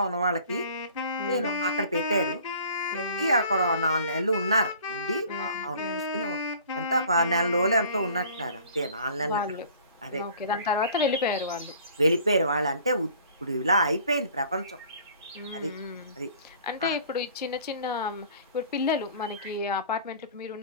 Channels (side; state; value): both; inverted; correlation -0.50